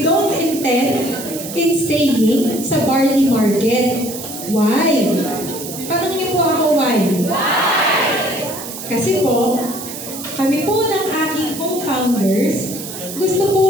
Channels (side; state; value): right; noise; hiss, 10 dB below the sound